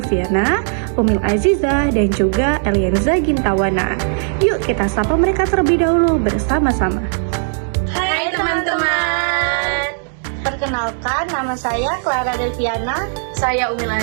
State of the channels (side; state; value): left; silent; 66 dB below the other